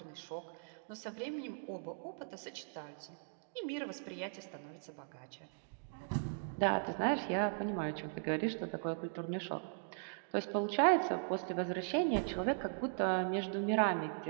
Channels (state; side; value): silent; left; digital silence